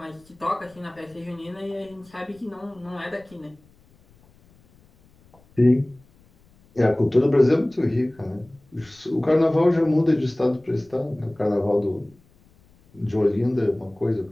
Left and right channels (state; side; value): noise; left; rumble, 30 dB below the sound